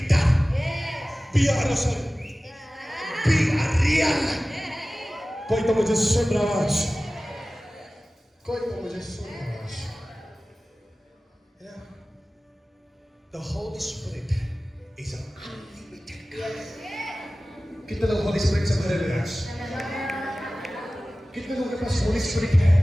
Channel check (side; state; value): both; normal; correlation 0.97